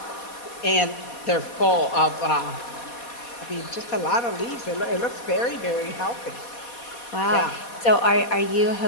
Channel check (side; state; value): right; late; 4.2 ms